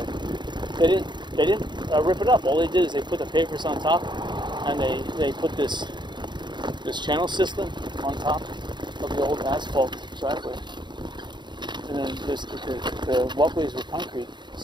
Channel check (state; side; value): late; left; 0.22 ms